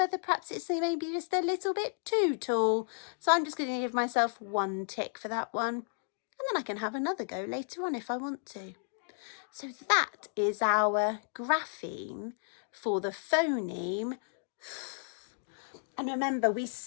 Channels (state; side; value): silent; right; digital silence